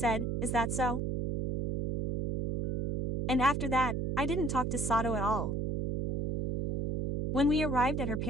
"Is that so?" And after that, I didn't talk to Sato at all. When we arrived at her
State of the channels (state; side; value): noise; right; hum, 1 dB below the sound